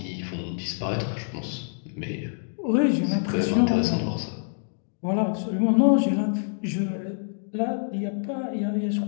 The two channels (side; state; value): right; silent; digital silence